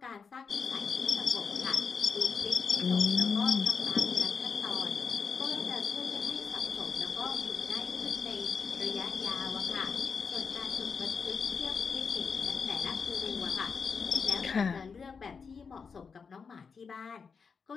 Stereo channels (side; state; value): right; quieter; 5.6 dB